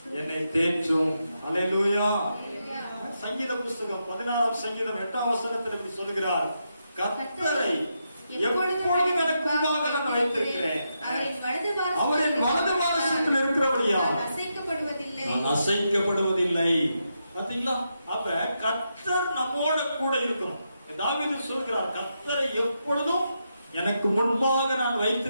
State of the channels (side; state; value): both; inverted; correlation -0.84